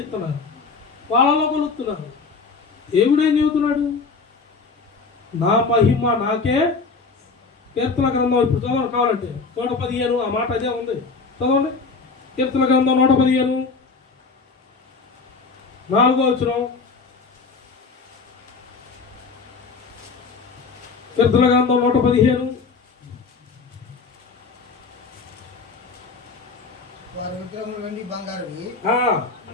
ఇస్తున్నారు, వాళ్ళలో కొలుస్తున్నారు. దేవుడేం చెబుతున్నాడు? నా మహిమ నాకే. కీర్తన గ్రంథం ఇప్పుడు చదవండి కావాలంటే 115 ఆ మాట అదే ఉంది, చదవండి. కీర్తన గ్రంథం 115 4వ వచనం. కీర్తన గ్రంథం 115. వారి విగ్రహములు వెండి బంగారువి,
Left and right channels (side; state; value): right; quieter; 4.5 dB